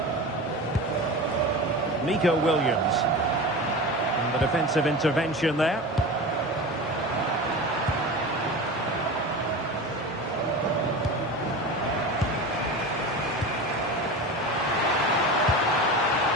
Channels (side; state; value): both; normal; correlation 0.29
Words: Nico Williams. And the defensive intervention there.